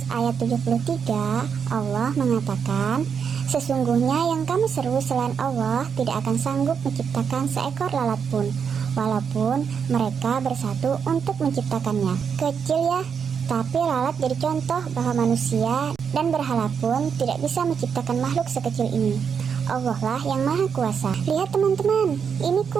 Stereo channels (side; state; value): left; quieter; 6.8 dB